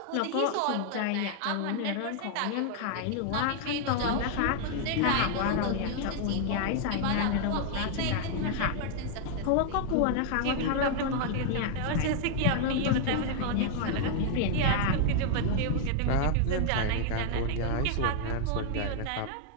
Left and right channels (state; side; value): different; both; correlation 0.00